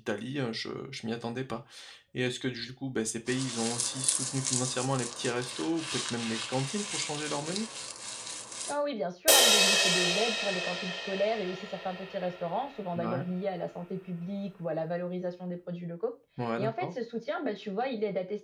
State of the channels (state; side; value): identical; both; correlation 1.00